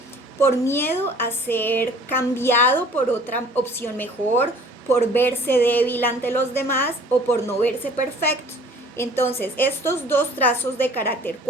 por miedo a ser cambiado por otra opción mejor, por verse débil ante los demás o por no verse perfecto. Entonces, estos dos trazos de carácter,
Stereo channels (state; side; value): normal; both; correlation 0.51